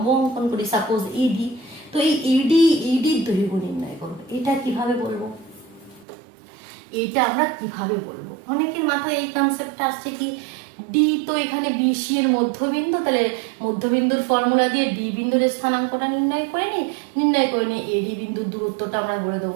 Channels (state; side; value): drops out; left; at 6.1 s